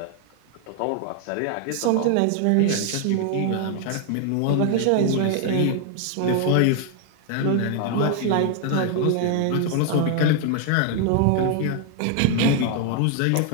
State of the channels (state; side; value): different; both; correlation 0.00